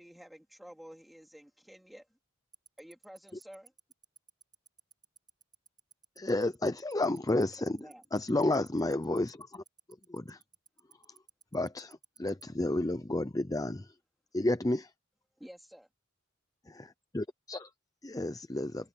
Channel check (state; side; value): normal; both; correlation 0.80